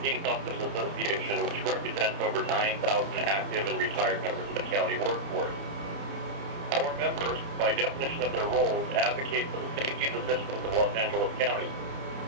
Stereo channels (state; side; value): late; left; 30 ms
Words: Peace Officers Association, which represents over 9,000 active and retired members of the county workforce. Our members, by definition of their roles, advocate for the safety and the citizens of Los Angeles County.